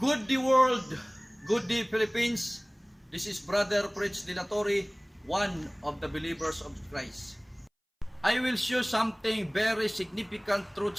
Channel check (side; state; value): both; identical; correlation 1.00